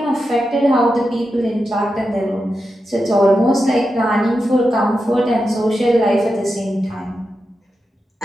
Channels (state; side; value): normal; both; correlation 0.89